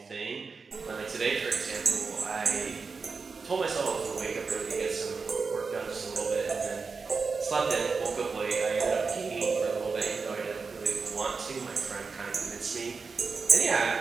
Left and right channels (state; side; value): quieter; left; 4.8 dB